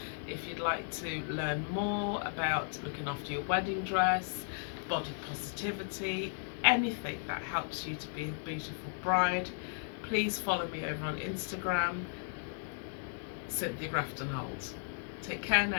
If you'd like to learn more about looking after your wedding dress, body positivity, anything that helps you to be a beautiful bride, please follow me over on Instagram, Cynthia Grafton-Holt. Take care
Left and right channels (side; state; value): right; silent; digital silence